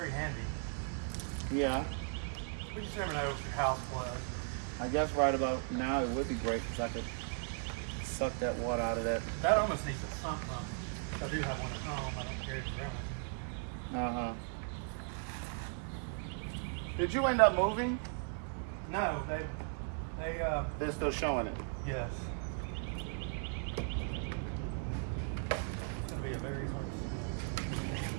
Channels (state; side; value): silent; left; 53 dB below the other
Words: handy. Yeah. We just never know if your house floods. I guess right about now it would be great because I could suck that water out of that. That almost needs a sump pump. I do have one at home. I don't carry it around. Uh-huh. Did you end up moving? No, They're still showing it. yes. It's gonna be a very hard